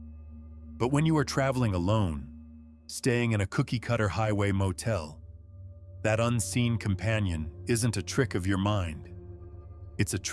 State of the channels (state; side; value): identical; both; correlation 1.00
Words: But when you are traveling alone, staying in a cookie-cutter highway motel, that unseen companion isn't a trick of your mind. It's a